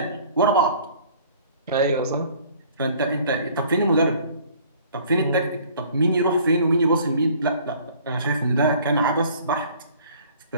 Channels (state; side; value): inverted; both; correlation -0.53